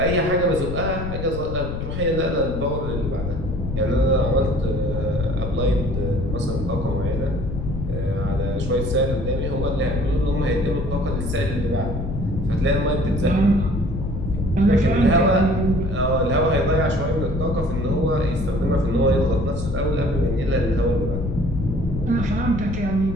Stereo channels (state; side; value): noise; left; rumble, 5 dB below the sound